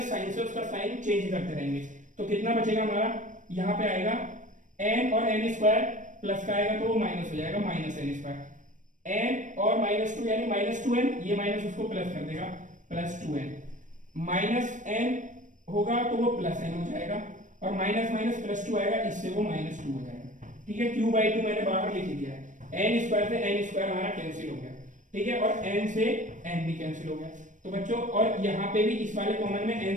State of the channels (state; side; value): late; left; 0.37 ms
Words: साइन से उसका साइन चेंज करते रहेंगे। तो कितना बचेगा हमारा, यहाँ पे आएगा n और n स्क्वायर प्लस का आएगा तो वो माइनस हो जाएगा माइनस n स्क्वायर, n और माइनस टू यानी माइनस 2n, ये माइनस उसको प्लस कर देगा प्लस 2n, माइनस n होगा तो वो प्लस n हो जाएगा और माइनस माइनस प्लस 2 आएगा, इससे वो माइनस 2 हो जाएगा। ठीक है, q बाई 2 मैंने बाहर लिख दिया है, n स्क्वायर से n स्क्वायर हमारा कैंसिल हो गया। ठीक है, और n से n भी कैंसिल हो गया। तो बच्चों और यहाँ पे भी इस वाले कॉमन में